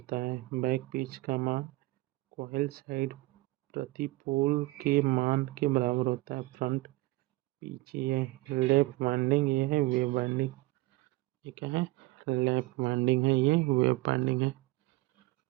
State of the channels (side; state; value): left; quieter; 20.7 dB